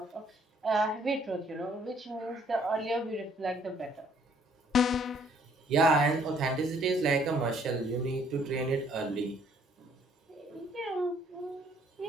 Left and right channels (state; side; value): normal; both; correlation 0.63